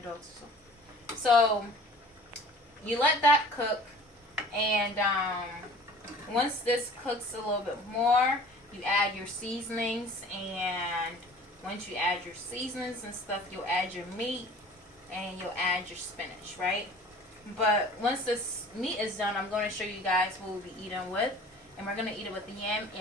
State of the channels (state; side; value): normal; both; correlation 0.46